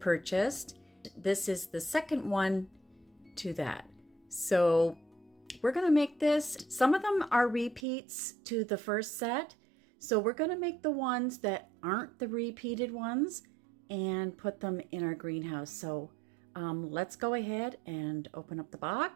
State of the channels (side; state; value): left; drops out; at 7.8 s